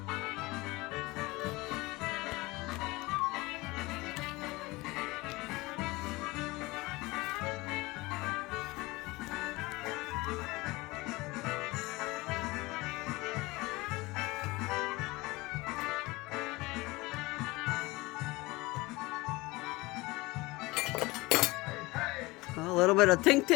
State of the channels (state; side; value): quieter; right; 22.1 dB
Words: A little bit of tink